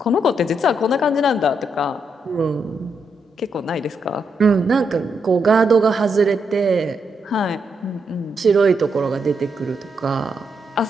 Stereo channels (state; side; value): normal; both; correlation 0.80